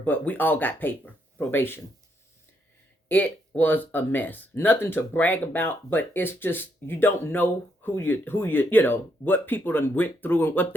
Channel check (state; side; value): normal; both; correlation 0.76